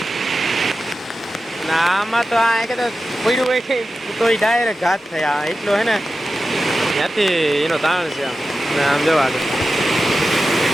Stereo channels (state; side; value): normal; both; correlation 0.93